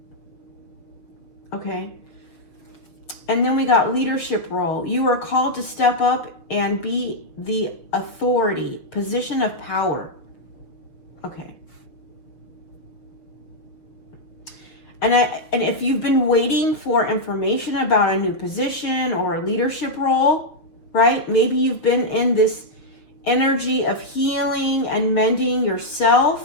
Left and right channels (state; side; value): late; right; 6.5 ms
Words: Okay. And then we got leadership role. You are called to step up and be the authority, position of power. Okay. And if you've been waiting for information about a new position or a leadership role, right? Maybe you've been in this energy of healing and mending